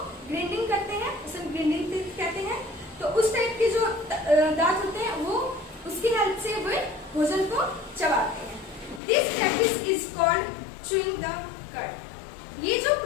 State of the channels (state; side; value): drops out; right; at 9.0 s